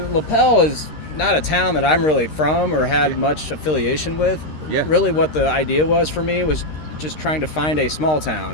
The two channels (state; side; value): late; right; 13 ms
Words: Lapel is not a town that I'm really from or had much affiliation with. Yeah. Really, what the idea was for me was just trying to find a small town.